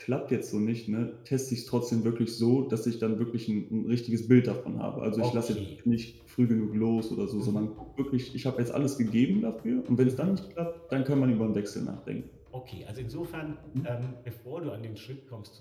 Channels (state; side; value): identical; both; correlation 1.00